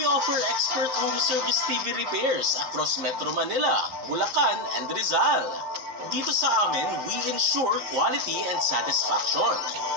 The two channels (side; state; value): left; late; 11 ms